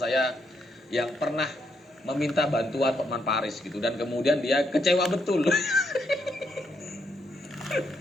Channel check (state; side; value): normal; both; correlation 0.78